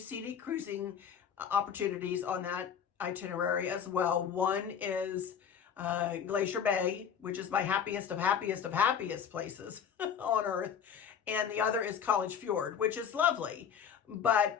cruising opportunities on that itinerary as well. One is Glacier Bay, which is my happiest of happiest places on earth. And the other is College Fjord, which is lovely.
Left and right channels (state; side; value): quieter; right; 7.9 dB